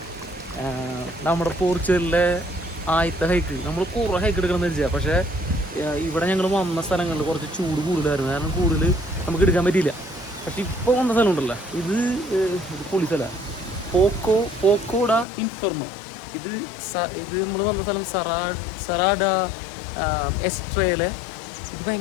നമ്മുടെ പോർച്ചുഗലിലെ ആദ്യത്തെ ഹൈക്ക്. നമ്മൾ കുറേ ഹൈക്ക് എടുക്കണമെന്ന് വെച്ചാൽ, പക്ഷേ ഇവിടെ ഞങ്ങൾ വന്ന സ്ഥലങ്ങളിൽ കുറച്ച് ചൂട് കൂടുതലായിരുന്നു. കാരണം കൂടുതൽ നമുക്ക് എടുക്കാൻ പറ്റിയില്ല. പക്ഷെ ഇപ്പോൾ വന്ന സ്ഥലം ഉണ്ടല്ലോ, ഇത് പൊളി സ്ഥലമാണ്. പോക്കോഡ ഇൻഫെർണോ. ഇത് നമ്മൾ വന്ന സ്ഥലം സറാഡ എസ്ട്രയിലെ. ഇത്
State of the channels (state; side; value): drops out; right; at 15.2 s